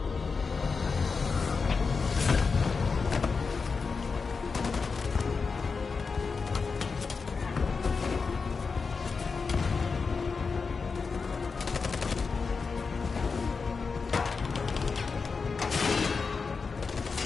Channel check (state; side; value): quieter; right; 4.9 dB